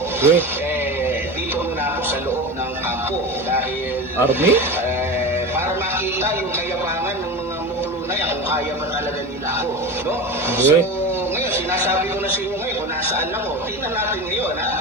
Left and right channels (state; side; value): normal; both; correlation 0.27